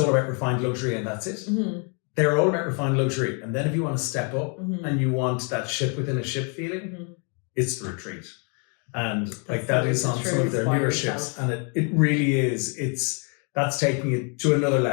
about refined luxury and that's it. They're all about refined luxury. And then if you want to step up and you want that ship within a ship feeling, it's the retreat. And like that is on some of their newer ships. And it really is. That's taking it to another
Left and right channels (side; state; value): right; quieter; 38.1 dB